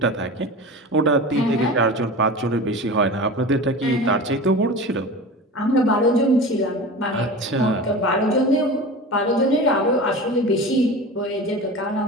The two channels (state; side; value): normal; both; correlation 0.32